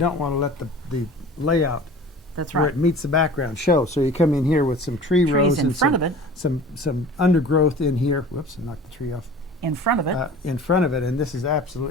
want to let the layout That's where right. it meets the background show. So you come in here with some tree rows in and front of it. some undergrowth in here. Whoops, I knocked the tree off. In front of it. In front of it, and this is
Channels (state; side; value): normal; both; correlation 0.42